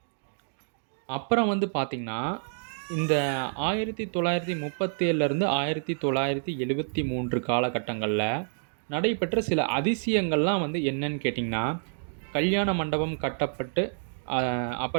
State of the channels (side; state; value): left; silent; digital silence